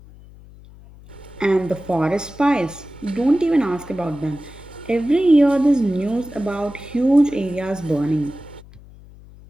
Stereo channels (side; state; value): left; noise; hum, 21 dB below the sound